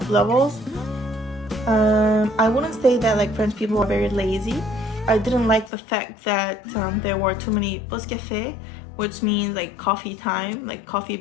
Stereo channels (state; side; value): drops out; right; at 5.7 s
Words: levels. I wouldn't say that like French people are very lazy. I didn't like the fact that there were too many pause café, which means like coffee time, like coffee